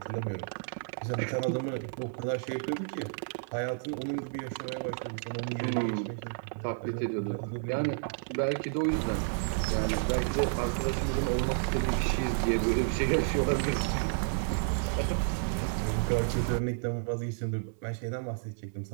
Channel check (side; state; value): left; silent; 57 dB below the other